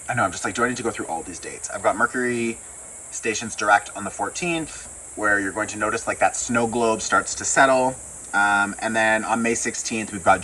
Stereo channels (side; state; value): both; identical; correlation 1.00